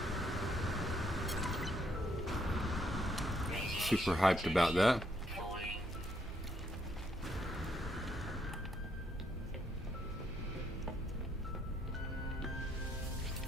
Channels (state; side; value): normal; both; correlation 0.73